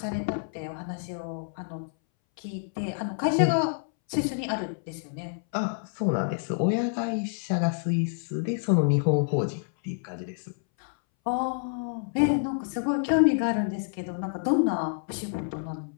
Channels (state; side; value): silent; right; 59 dB below the other